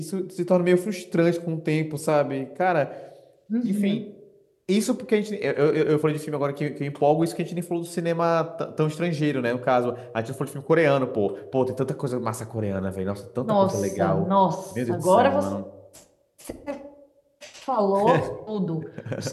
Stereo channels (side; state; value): both; identical; correlation 1.00